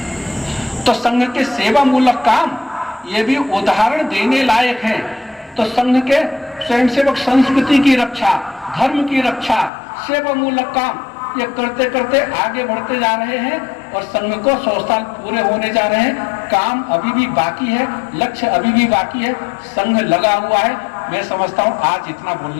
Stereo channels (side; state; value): right; drops out; at 9.7 s